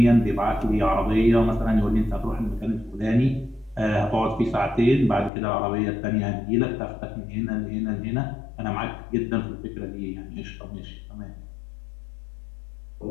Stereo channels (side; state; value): right; drops out; at 5.3 s